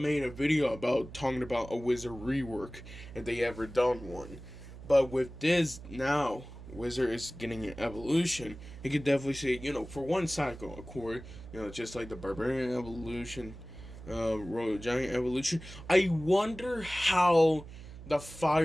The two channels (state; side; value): noise; right; hum, 15 dB below the sound